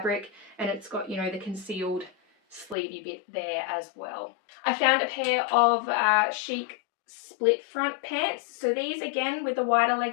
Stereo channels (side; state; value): right; drops out; at 2.8 s